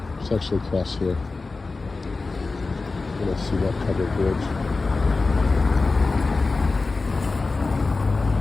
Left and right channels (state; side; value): quieter; right; 3.8 dB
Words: It's actually across here. You're gonna see that covered bridge.